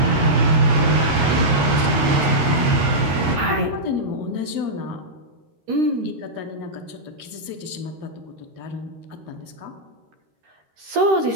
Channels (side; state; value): left; late; 13 ms